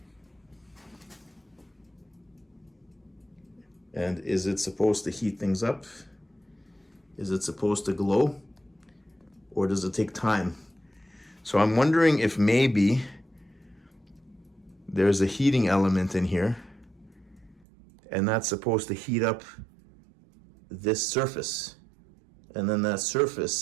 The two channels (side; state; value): left; drops out; at 17.7 s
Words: And is it supposed to heat things up? Is it supposed to glow? Or does it take time? So I'm wondering if maybe there's a heating element in here, and that's supposed to heat up this surface. And then that